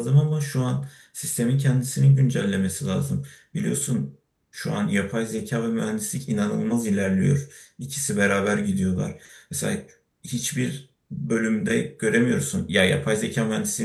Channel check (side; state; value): both; identical; correlation 1.00